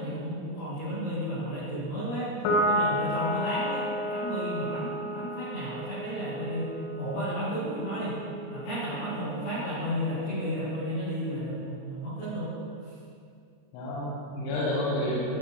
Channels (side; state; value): right; late; 34 ms